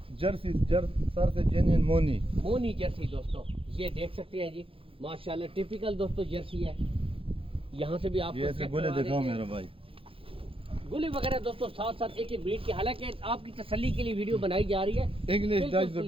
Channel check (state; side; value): late; left; 0.27 ms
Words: जर्सी सर से जेन्युइन मोनी, मोनी जर्सी दोस्तों, ये देख सकते हैं जी माशाल्लाह, टिपिकल दोस्तों जर्सी है। यहाँ से भी आपको ये चेक गोले करवा दिखाओ देते हैं। मेरा भाई। गोले वगैरह दोस्तों साथ साथ एक एक ब्रीड की, हालांकि आपकी तसल्ली के लिए वीडियो बनाई जा रही है। इंग्लिश बिल्कुल डच